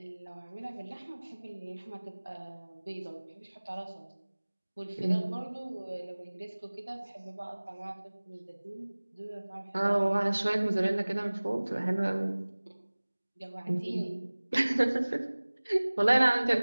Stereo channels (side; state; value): both; inverted; correlation -1.00